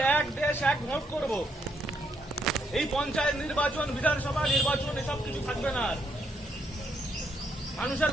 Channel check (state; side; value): normal; both; correlation 0.75